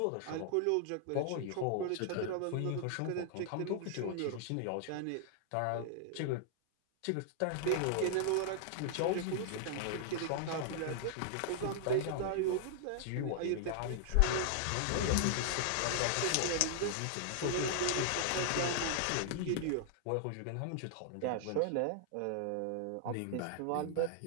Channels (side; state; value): both; different; correlation -0.01